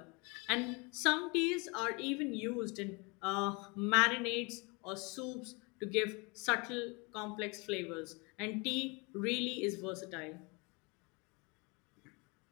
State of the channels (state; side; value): quieter; right; 29.0 dB